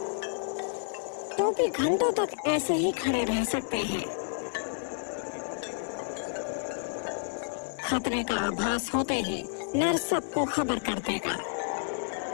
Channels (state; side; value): silent; right; 58 dB below the other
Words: टोपी घंटों तक ऐसे ही खड़े रह सकते हैं। खतरे का आभास होते ही नर सबको खबर कर देगा।